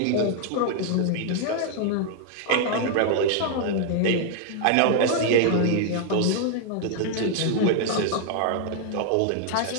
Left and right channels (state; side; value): different; both; correlation 0.00